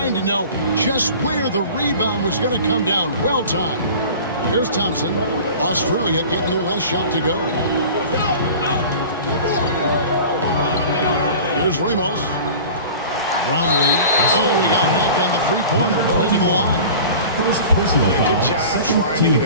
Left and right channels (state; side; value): inverted; both; correlation -0.39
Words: to know just where the rebound was going to come down. Well timed. Here's Thompson. Australia getting their last shot to go. Here's Ramos. Brownlee. Oh, he got hacked on the 3-pointer. Go ahead to the line. First personal foul, Good job second trying to team get a